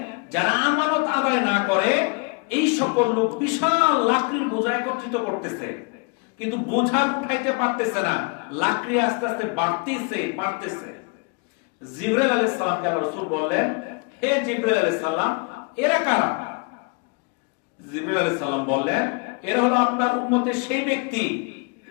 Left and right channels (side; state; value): right; quieter; 33.2 dB